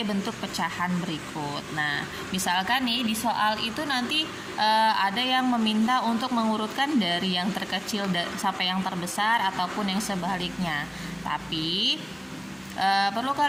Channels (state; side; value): identical; both; correlation 1.00